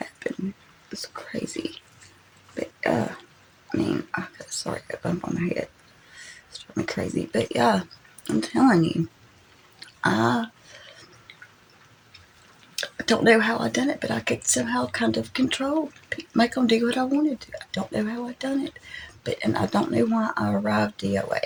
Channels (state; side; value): identical; both; correlation 1.00